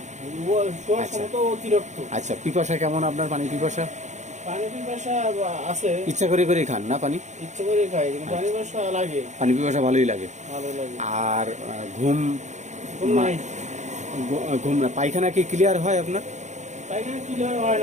আচ্ছা, পিপাসা কেমন আপনার? পানি পিপাসা আছে? ইচ্ছা করে করে খান না পানি? ইচ্ছা করে খাই, কিন্তু পানি পিপাসা ভালোই লাগে। আর ঘুম নাই। ঘুম না, পায়খানা কি ক্লিয়ার হয় আপনার? পায়খানা ক্লিয়ার হয়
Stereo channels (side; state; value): left; late; 0.34 ms